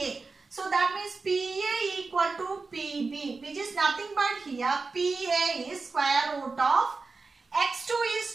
so that means PA equal to PB, which is nothing but here PA is square root of x2 is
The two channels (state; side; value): quieter; left; 4.1 dB